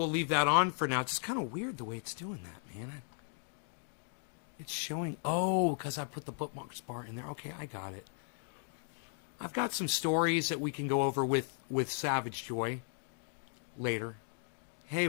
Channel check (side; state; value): right; silent; 54 dB below the other